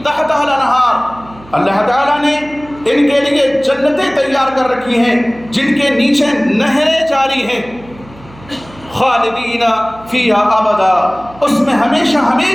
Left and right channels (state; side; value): noise; right; hum, 22 dB below the sound